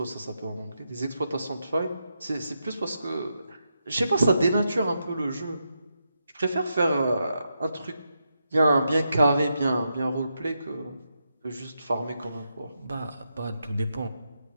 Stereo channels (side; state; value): both; inverted; correlation -0.85